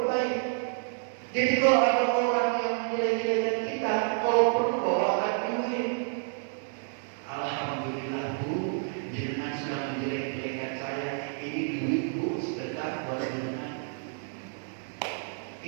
baik. Jadi kalau ada orang yang menjelek-jelekkan kita, kalau perlu bawakan duit. Alhamdulillah Bu, jenengan sudah menjelek-jelekkan saya. Ini duit Bu, sedekah buat jenengan.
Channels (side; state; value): left; silent; 58 dB below the other